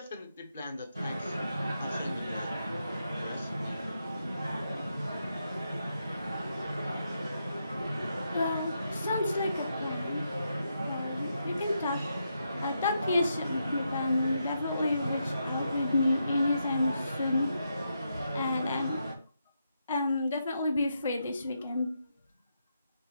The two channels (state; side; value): inverted; both; correlation -0.83